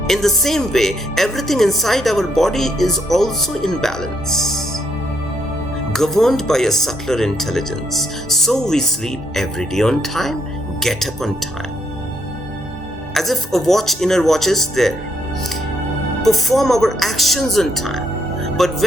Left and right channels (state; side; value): normal; both; correlation 0.74